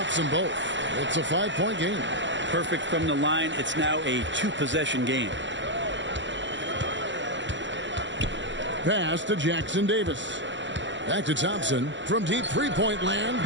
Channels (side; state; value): left; late; 0.54 ms